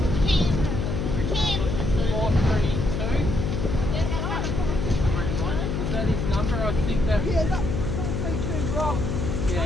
Was that his number? I think that... Yeah, that's 432 Rob. Yeah,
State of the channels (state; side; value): noise; left; hum, 1 dB below the sound